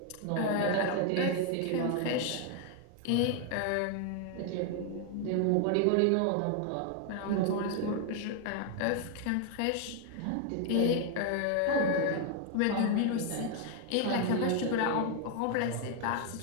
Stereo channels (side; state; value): both; different; correlation 0.00